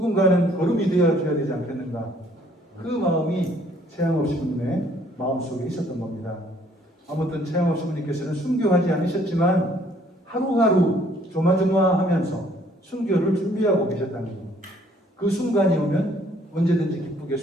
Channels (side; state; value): both; normal; correlation 0.62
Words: 걸음이 되어줘야 되지 않겠는가. 그 마음이 최양업 신부님의 마음속에 있었던 겁니다. 아무튼 최양업 신부님께서는 순교하지 않으셨지만 하루하루 조마조마하면서 순교를 준비하고 계셨다는 겁니다. 그 순간이 오면 언제든지 기쁘게